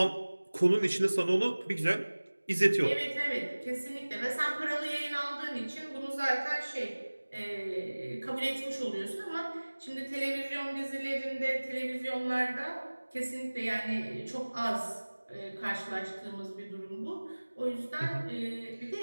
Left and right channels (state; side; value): inverted; both; correlation -1.00